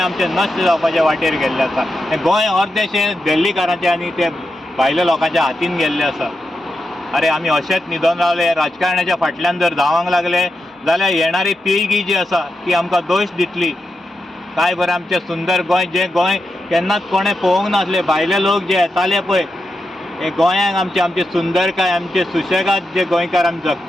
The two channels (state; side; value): normal; both; correlation 0.87